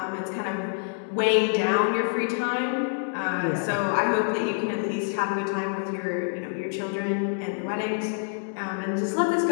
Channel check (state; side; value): silent; right; 60 dB below the other